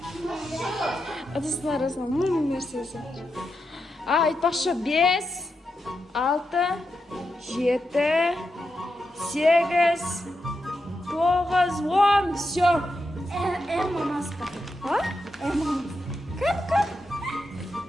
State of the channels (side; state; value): both; normal; correlation 0.86